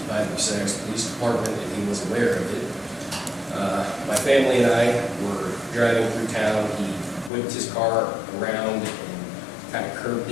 by the Bucyrus Police Department, and he was aware of it. My family and I were driving through town. He whipped his car around and kind of curved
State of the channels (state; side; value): drops out; right; at 7.3 s